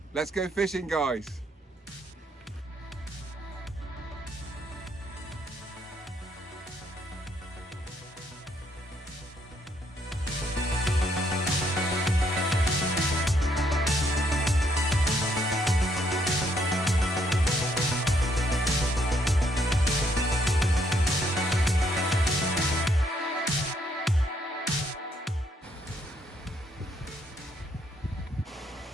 Let's go fishing, guys.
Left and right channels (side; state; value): both; normal; correlation 0.71